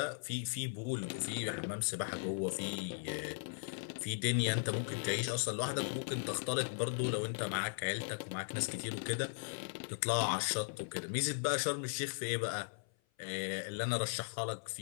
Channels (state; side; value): silent; right; 53 dB below the other